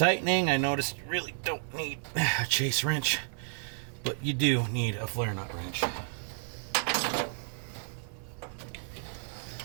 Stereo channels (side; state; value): left; silent; 57 dB below the other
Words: I noticed you really don't need a chase wrench, but you do need a flare nut wrench.